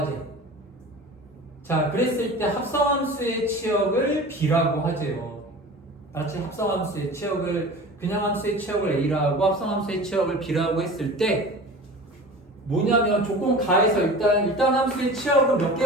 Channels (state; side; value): normal; both; correlation 0.37